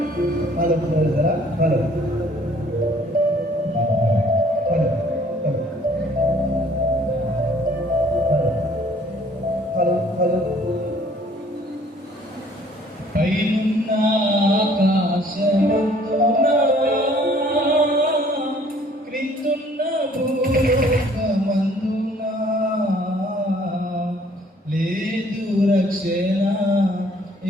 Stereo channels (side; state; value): both; normal; correlation 0.58